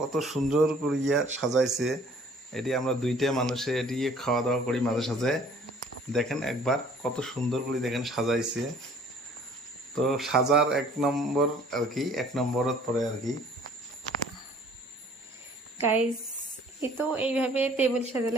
সুন্দর করিয়া সাজাইছে। এটি আমরা দুইটা মানুষে এটি খাওয়া দাওয়া করি মাঝে সাঝে। দেখেন একবার কত সুন্দর করে দেখেন সাজাইছে। তো সাজার এক নম্বর আর কি, এক নম্বরত পরে আর কি। গাইস এই তো এইভাবে টেবিল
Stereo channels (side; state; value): both; normal; correlation 0.54